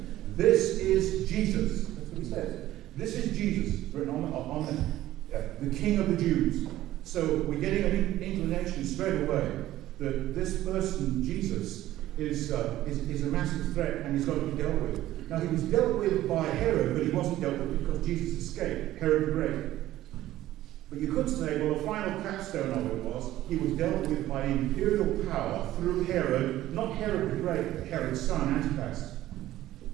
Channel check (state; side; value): quieter; left; 14.6 dB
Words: This is Jesus. That's what he says. This is Jesus, written on the King of the Jews. So we're getting an inclination straight away that this person, Jesus, is a massive threat, and he's got to be dealt with. Now, he was dealt with by Herod, but he wasn't dealt with because Jesus escaped, Herod the Great. But you could say, well, the final capstone of it was, he was dealt with by imperial power through Herod, not Herod the Great, but Herod's son, Antipas.